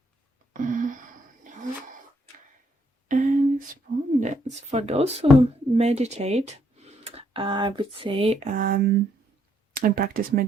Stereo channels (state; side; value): normal; both; correlation 0.72